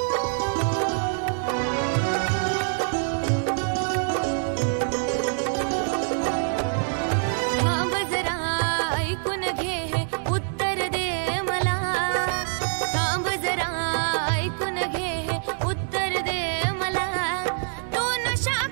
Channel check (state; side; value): silent; left; 62 dB below the other